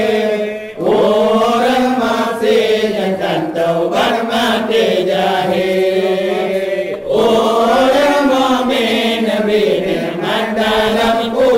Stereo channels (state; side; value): identical; both; correlation 1.00